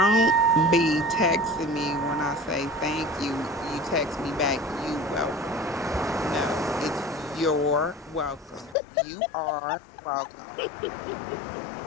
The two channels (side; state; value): right; drops out; at 8.8 s